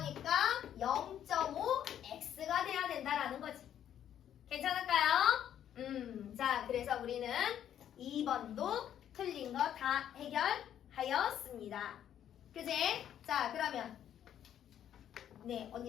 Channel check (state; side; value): quieter; right; 10.2 dB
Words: 0.5X가 돼야 된다라는 거지. 괜찮을까요? 자, 그래서 우리는 2번도 틀린 거 다 해결하였습니다. 그지? 자, 그러면 네,